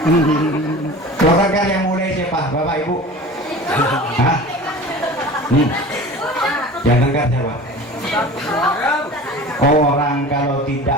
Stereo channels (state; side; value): normal; both; correlation 0.38